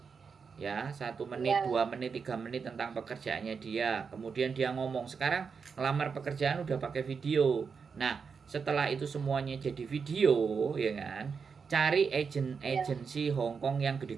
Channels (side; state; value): left; quieter; 5.7 dB